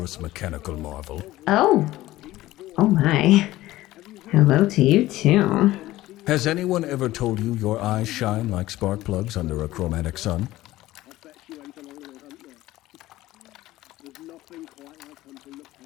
mechanical marvel. Oh my. Hello to you too. Has anyone ever told you your eyes shine like spark plugs under a chromatic sun?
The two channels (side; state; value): right; quieter; 16.4 dB